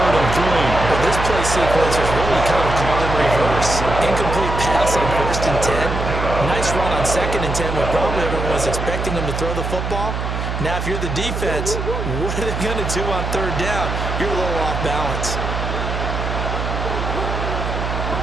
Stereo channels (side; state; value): right; noise; hum, 3 dB below the sound